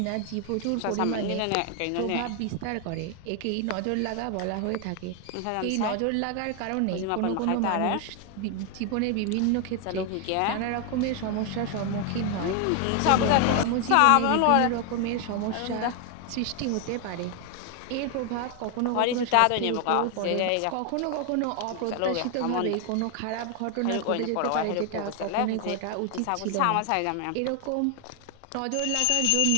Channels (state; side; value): different; both; correlation 0.01